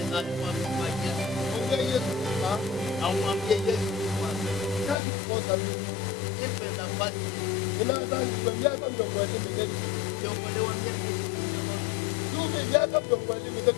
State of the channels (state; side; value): drops out; right; at 5.0 s